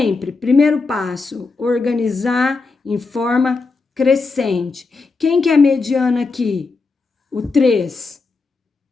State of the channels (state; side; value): quieter; right; 4.1 dB